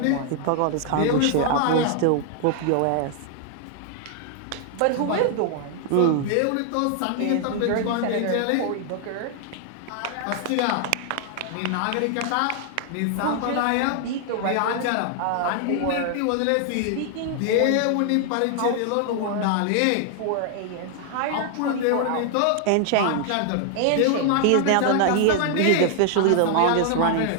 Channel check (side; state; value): both; different; correlation 0.00